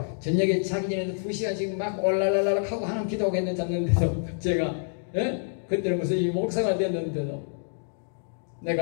저녁에 자기 전에도 2시간씩 막 올랄랄랄 하고 하나님 기도하고 했는데 잤는데도 제가 예? 그때는 무슨 이 목사가 됐는데도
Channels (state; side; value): silent; right; digital silence